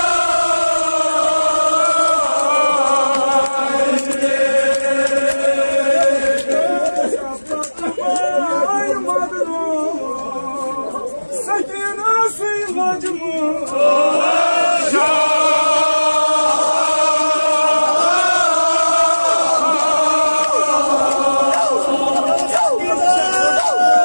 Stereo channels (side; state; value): both; inverted; correlation -1.00